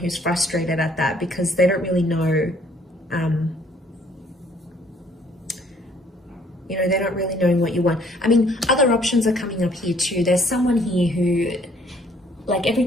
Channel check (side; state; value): both; normal; correlation 0.61